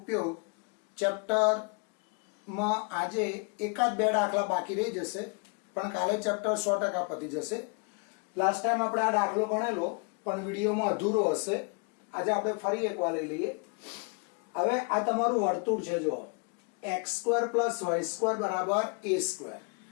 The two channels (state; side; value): quieter; right; 35.3 dB